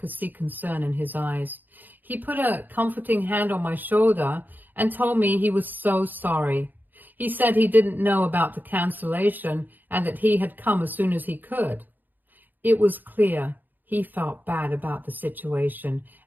see concern in his eyes. He put a comforting hand on my shoulder and told me he was so sorry. He said he didn't know about the cancellation and that he had come as soon as he could. It was clear he felt bad about the situation,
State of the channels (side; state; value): left; late; 0.087 ms